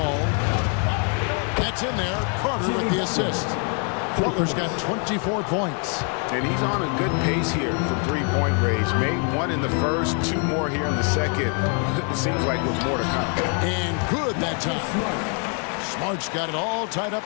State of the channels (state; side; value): quieter; right; 39.8 dB